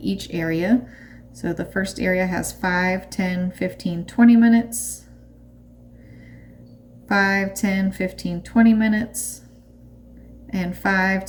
area. So the first area has 5, 10, 15, 20 minutes. 5, 10, 15, 20 minutes. And 5,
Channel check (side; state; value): both; identical; correlation 1.00